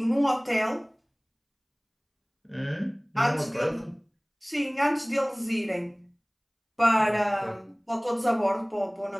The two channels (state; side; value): identical; both; correlation 1.00